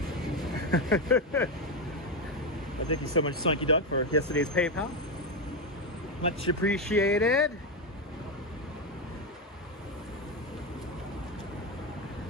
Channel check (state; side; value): normal; both; correlation 0.09